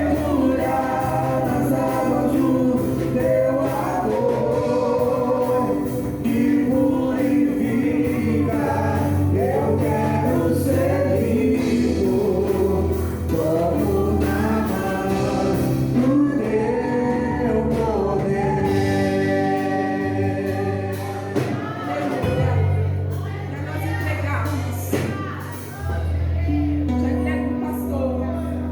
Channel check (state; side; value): identical; both; correlation 1.00